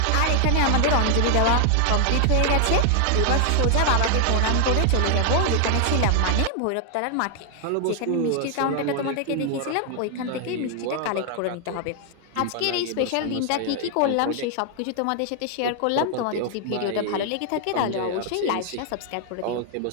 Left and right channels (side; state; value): both; different; correlation 0.00